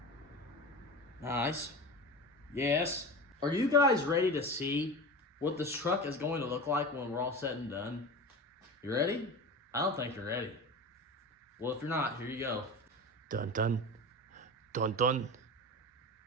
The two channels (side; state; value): both; normal; correlation 0.29